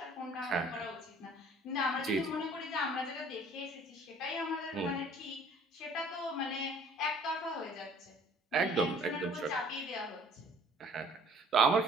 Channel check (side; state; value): both; normal; correlation 0.54